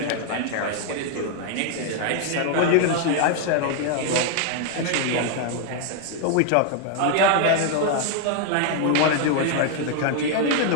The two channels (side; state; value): both; different; correlation 0.00